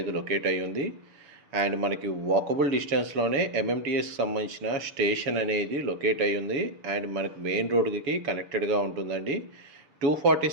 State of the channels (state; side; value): late; left; 7.2 ms